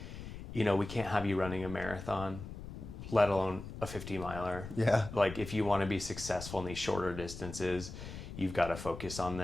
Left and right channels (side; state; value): left; noise; rumble, 10 dB below the sound